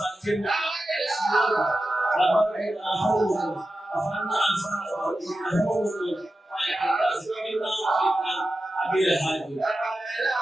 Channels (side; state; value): both; normal; correlation 0.92